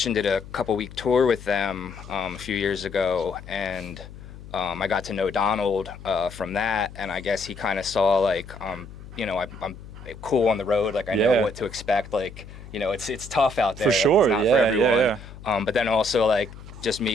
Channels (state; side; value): noise; left; hum, 15 dB below the sound